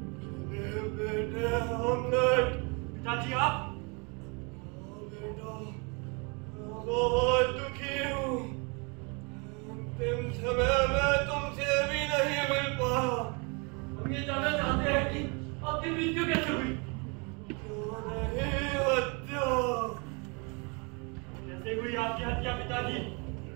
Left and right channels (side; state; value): left; quieter; 31.7 dB